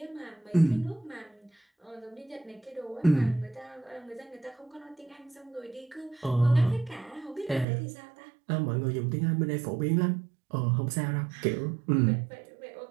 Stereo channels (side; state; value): left; drops out; at 7.7 s